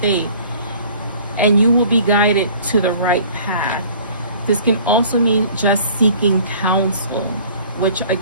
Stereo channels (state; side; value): inverted; both; correlation -0.50